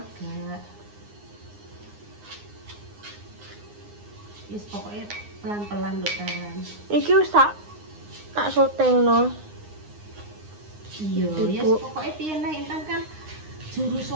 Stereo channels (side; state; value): left; late; 9.7 ms